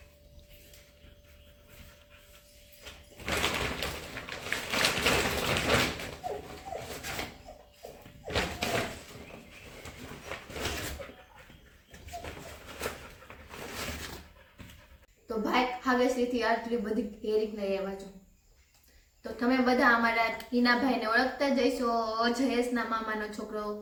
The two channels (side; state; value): both; identical; correlation 1.00